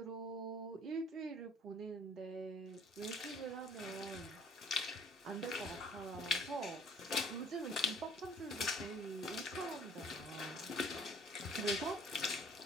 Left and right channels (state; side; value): normal; both; correlation 0.56